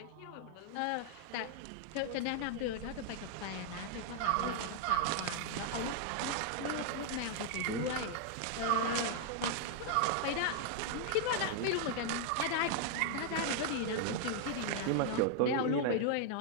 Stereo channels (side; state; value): both; different; correlation 0.00